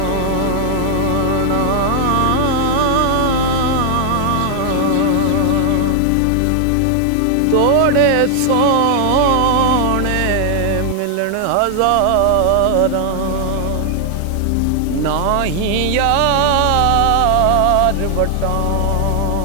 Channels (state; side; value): different; both; correlation 0.00